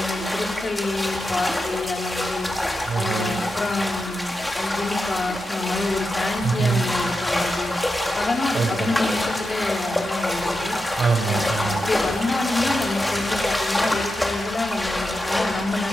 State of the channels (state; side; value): normal; both; correlation 0.88